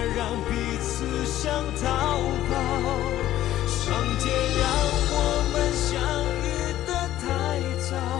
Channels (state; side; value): quieter; right; 13.4 dB